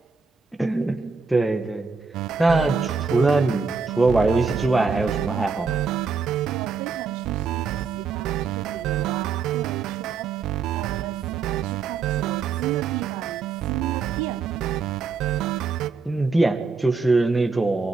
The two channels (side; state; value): left; quieter; 4.8 dB